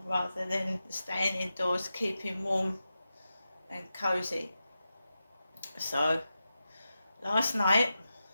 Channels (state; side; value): inverted; both; correlation -0.92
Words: rather than staying indoors, keeping warm and cosy. So, last night,